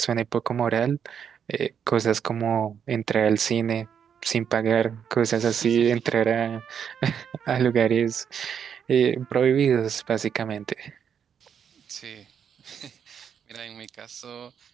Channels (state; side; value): quieter; left; 7.9 dB